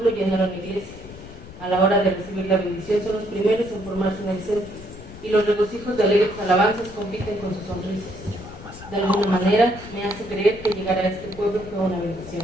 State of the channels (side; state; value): left; noise; rumble, 16 dB below the sound